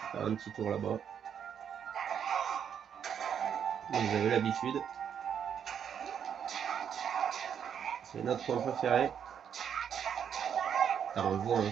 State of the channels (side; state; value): left; quieter; 8.2 dB